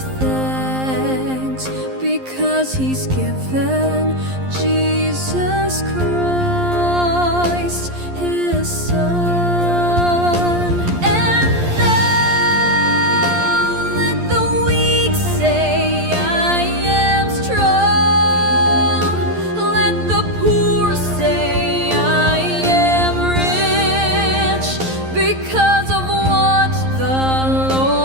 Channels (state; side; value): late; left; 11 ms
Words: thanks because He's given Jesus Christ, His Son. And now let the weak say, I am strong. Let the poor say, I am rich, because of what the